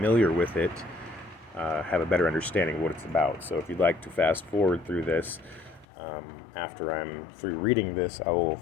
with it have a better understanding of what it's about. So if you'd like to fast forward through this, after I'm through reading this, I will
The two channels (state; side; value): drops out; right; at 5.9 s